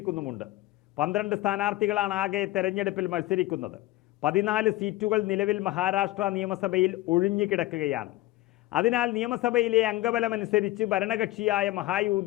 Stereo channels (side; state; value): right; quieter; 17.3 dB